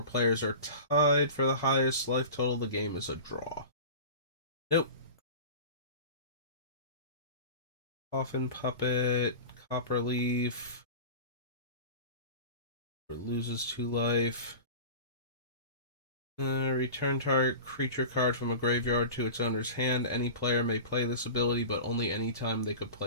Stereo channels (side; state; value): both; inverted; correlation -0.34